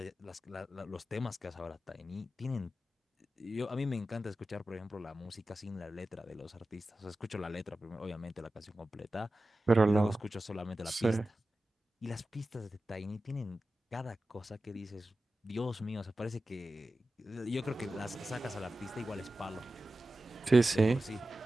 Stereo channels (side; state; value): both; normal; correlation 0.94